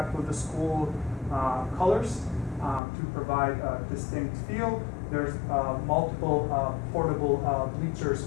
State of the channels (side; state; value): right; drops out; at 2.8 s